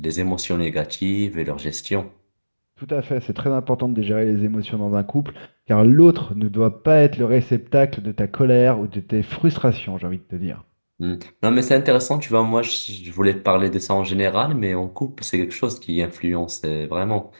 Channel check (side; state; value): both; inverted; correlation -1.00